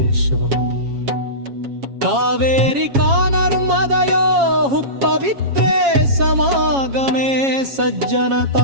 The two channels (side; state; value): left; late; 7.3 ms